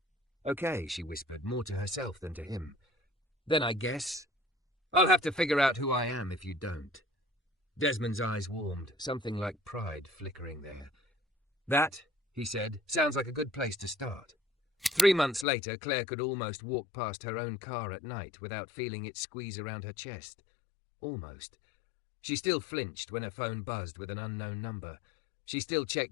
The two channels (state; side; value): drops out; right; at 15.5 s